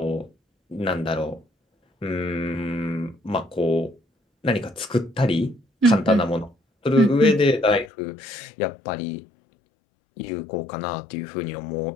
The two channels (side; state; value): right; drops out; at 7.9 s